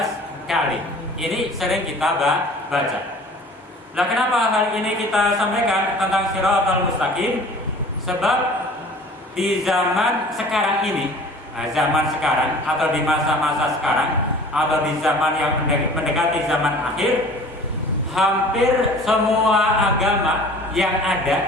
kali. Ini sering kita baca. Nah, kenapa hal ini kita sampaikan tentang Shiratal Mustaqim? Sebab di zaman sekarang ini, zaman sekarang atau di masa-masa sekarang atau di zaman yang mendekati zaman akhir, hampir semua agama yang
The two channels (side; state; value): both; normal; correlation 0.46